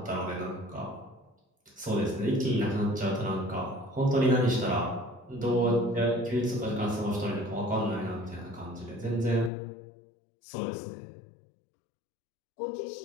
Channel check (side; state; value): right; drops out; at 9.5 s